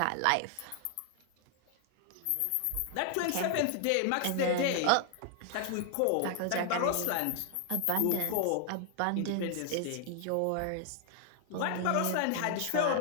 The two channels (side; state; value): both; different; correlation 0.00